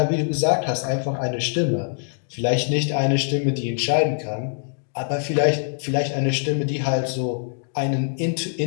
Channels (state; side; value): silent; right; digital silence